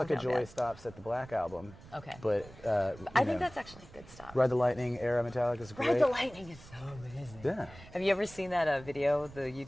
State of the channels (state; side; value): noise; right; rumble, 19 dB below the sound